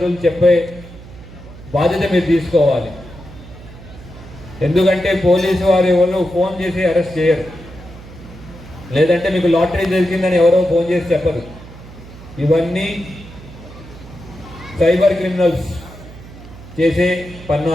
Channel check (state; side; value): noise; right; hum, 17 dB below the sound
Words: చెప్పే బాధ్యత మీరు తీసుకోవాలి. ఎందుకంటే పోలీసు వారు ఎవరు ఫోన్ చేసి అరెస్ట్ చేయరు, లేదంటే మీకు లాటరీ దొరికిందని ఎవరో ఫోన్ చేసి చెప్పరు. ఇవన్నీ సైబర్ క్రిమినల్స్ చేసే